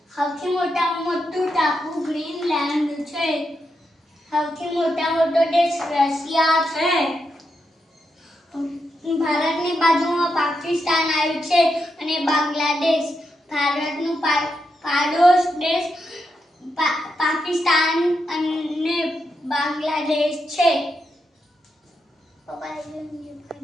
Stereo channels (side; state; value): both; normal; correlation 0.84